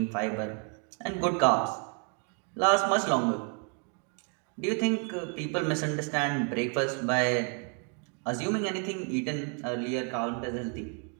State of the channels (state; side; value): quieter; left; 39.2 dB